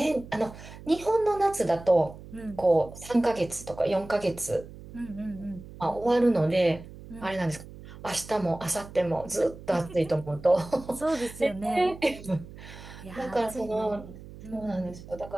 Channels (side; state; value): right; noise; hum, 16 dB below the sound